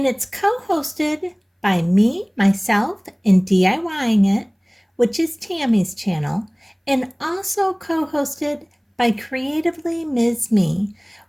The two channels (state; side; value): identical; both; correlation 1.00